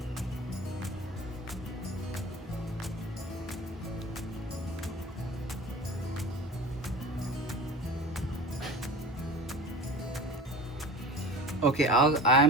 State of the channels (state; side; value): normal; both; correlation 0.36